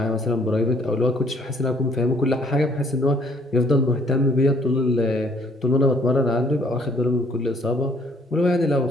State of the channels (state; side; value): normal; both; correlation 0.62